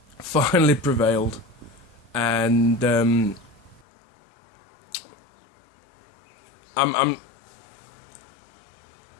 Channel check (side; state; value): right; drops out; at 3.8 s